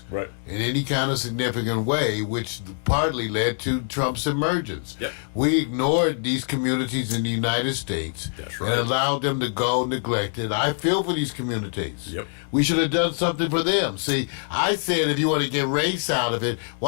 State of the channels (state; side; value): silent; right; 62 dB below the other